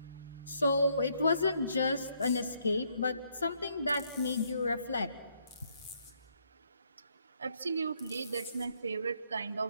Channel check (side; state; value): both; inverted; correlation -0.71